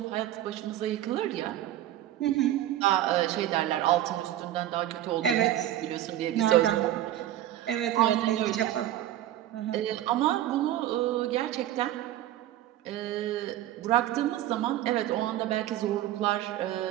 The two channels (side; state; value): left; quieter; 13.2 dB